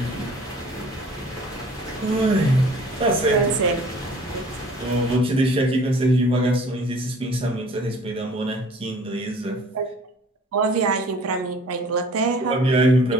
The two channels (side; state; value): both; normal; correlation 0.50